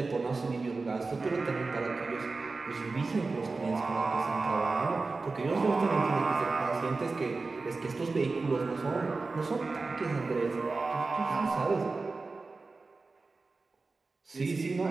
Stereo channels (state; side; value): quieter; left; 3.8 dB